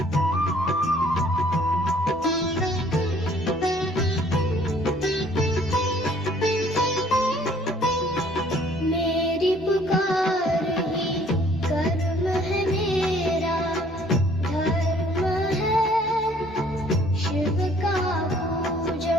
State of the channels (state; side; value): normal; both; correlation 0.59